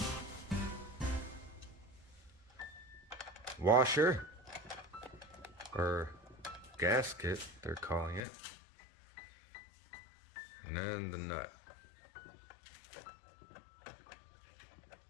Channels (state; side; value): drops out; right; at 8.2 s